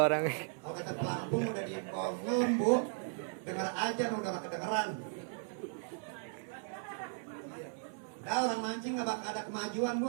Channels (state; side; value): silent; left; 53 dB below the other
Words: orang. Kalau kata pelampung udah diimbong Bu. Dengar aja udah gak kedengeran. Nah, orang mancing gak bakal ada kemajuan Bu,